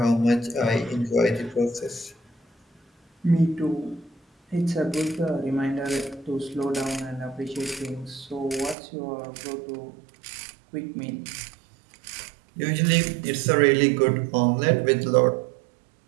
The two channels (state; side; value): drops out; left; at 8.8 s